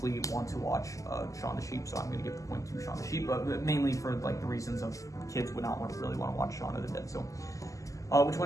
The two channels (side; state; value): right; late; 0.16 ms